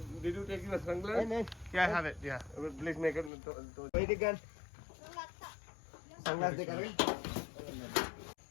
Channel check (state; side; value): drops out; right; at 3.3 s